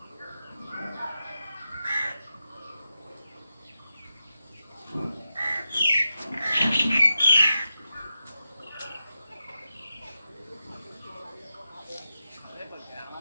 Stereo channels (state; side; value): inverted; both; correlation -0.90